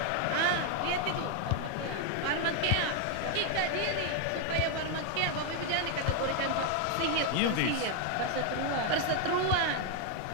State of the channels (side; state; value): both; different; correlation 0.00